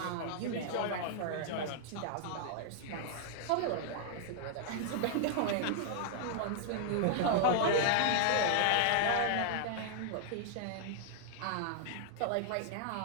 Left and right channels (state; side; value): different; both; correlation -0.01